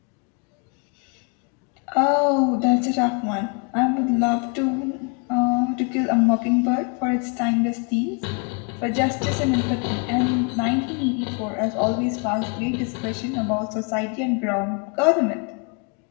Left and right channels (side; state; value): right; quieter; 35.6 dB